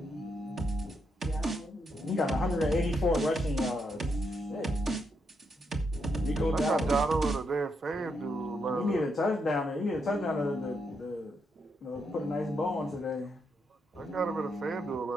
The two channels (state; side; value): normal; both; correlation 0.80